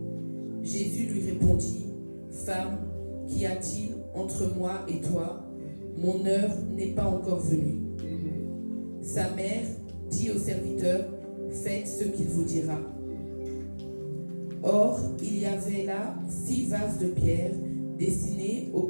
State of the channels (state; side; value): inverted; both; correlation -1.00